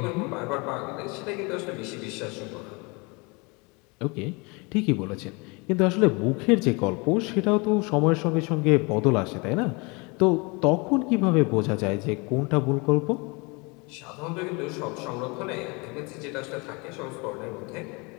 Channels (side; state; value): right; quieter; 28.7 dB